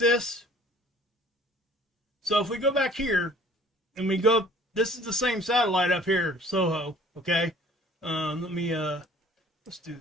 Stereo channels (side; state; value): both; normal; correlation 0.52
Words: So if we go back here, and we go, this is the same satellite up here, Soho, okay? Let me, let's do